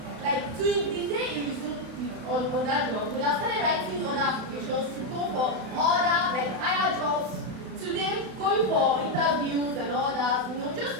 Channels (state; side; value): late; left; 32 ms